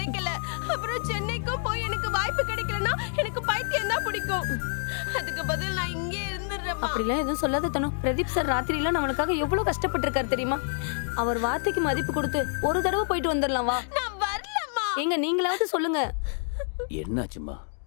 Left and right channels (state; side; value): silent; right; digital silence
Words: அப்புறம் சென்னைக்கும் போய் எனக்கு வாய்ப்பு கிடைக்கலன்னா எனக்கு பைத்தியம் தான் பிடிக்கும். அதுக்கு பதில் நான் இங்கே இருந்துடுறேன். அப்படிலாம் எதுவும் சொல்லாத தனு. பிரதீப் சார் ராத்திரியில நம்மளுக்காக எவ்வளவு கஷ்டப்பட்டு இருக்காரு தெரியுமா? அவர் வார்த்தைக்கு மதிப்பு கொடுத்து ஒரு தடவை போயிட்டு வந்துடலாம். வா. நான் வரலம்மா. எங்க நீங்களாவது சொல்லுங்க. என்னாச்சுமா?